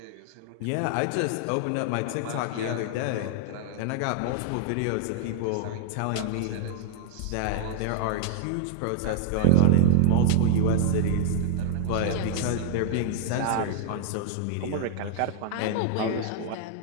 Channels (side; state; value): both; different; correlation -0.01